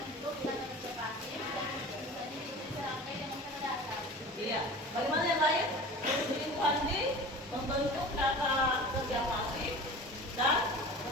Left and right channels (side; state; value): both; normal; correlation 0.38